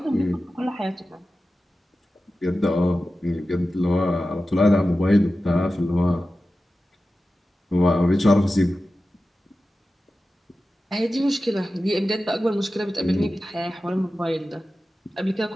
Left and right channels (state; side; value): normal; both; correlation 0.94